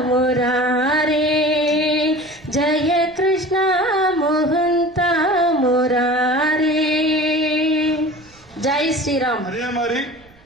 मुरारे जय कृष्ण मोहंत मुरारे जय श्री राम. அதே மாதிரி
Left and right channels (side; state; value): right; noise; rumble, 28 dB below the sound